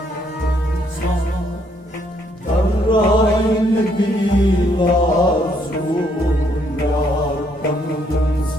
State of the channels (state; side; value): normal; both; correlation 0.70